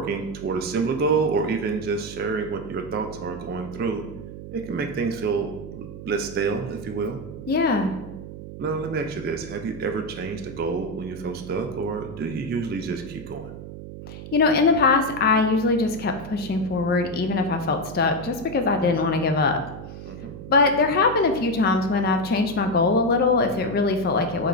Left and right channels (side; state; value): right; noise; hum, 12 dB below the sound